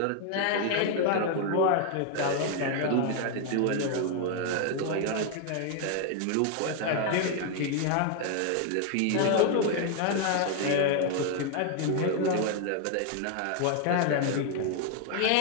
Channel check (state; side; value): different; both; correlation 0.01